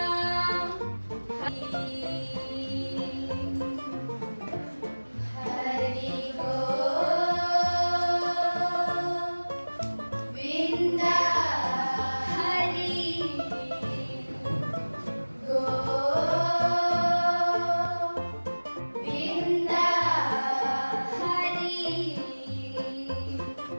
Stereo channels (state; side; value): inverted; both; correlation -1.00